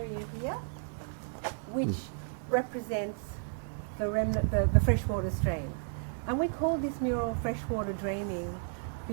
here, which represents the remnant, the freshwater stream. And we call this mural Freshwater Dreaming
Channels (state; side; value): silent; left; digital silence